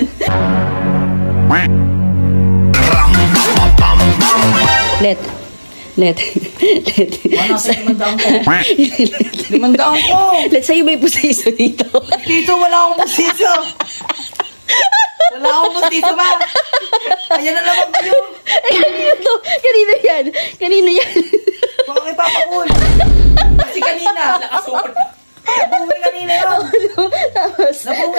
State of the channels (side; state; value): both; inverted; correlation -1.00